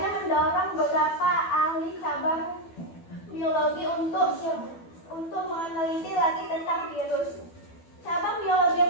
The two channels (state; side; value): late; right; 12 ms